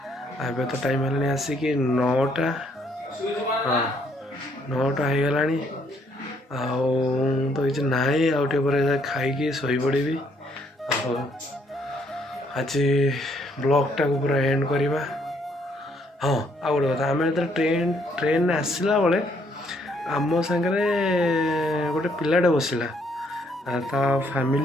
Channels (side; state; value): both; normal; correlation 0.69